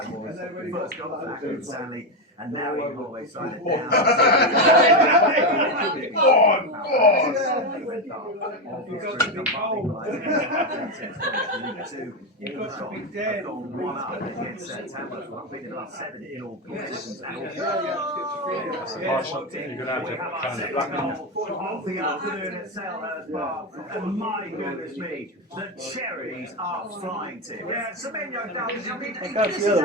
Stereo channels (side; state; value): both; normal; correlation 0.10